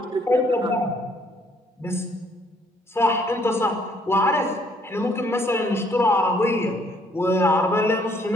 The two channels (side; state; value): both; normal; correlation 0.65